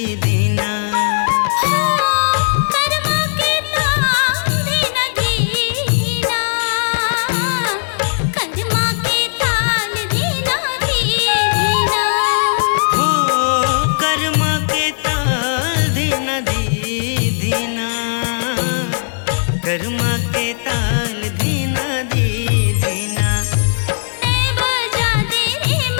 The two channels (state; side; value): silent; right; 62 dB below the other